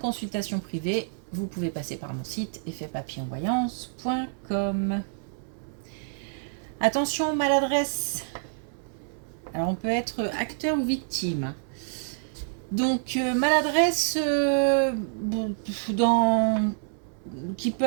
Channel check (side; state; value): left; silent; digital silence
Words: privée, vous pouvez passer par mon site effetpapillonvoyance.com. Attention, maladresse. Alors on peut être acteur ou victime. Donc maladresse qui